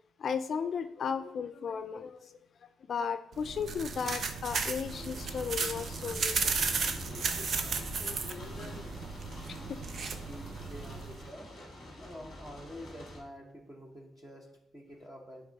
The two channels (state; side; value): normal; both; correlation 0.73